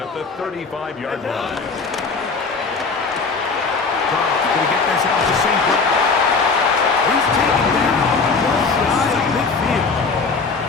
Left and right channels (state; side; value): quieter; right; 4.5 dB